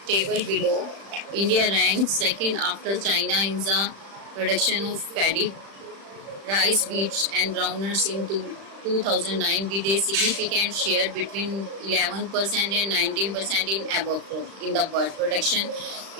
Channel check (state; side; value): late; left; 35 ms